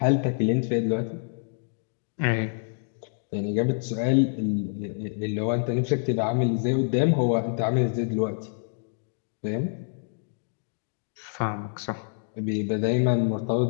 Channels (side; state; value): right; silent; digital silence